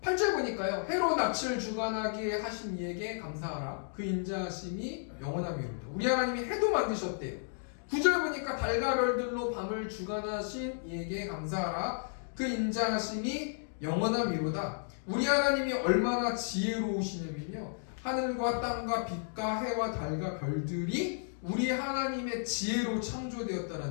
8절 보니까요. 해로 낯을 주관하게 하신 이에게 감사하라. 그 인자하심이 영원함이로다. 우리 하나님이 해도 만드셨대요. 9절 보니까 달과 별들로 밤을 주관하신 이에게 감사하라. 그 인자하심이 영원함이로다. 우리 하나님이 얼마나 지혜로우시냐면요. 하늘과 땅과 빛과 해와 달과 별들이 우리 하나님의 지혜로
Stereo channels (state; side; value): silent; right; digital silence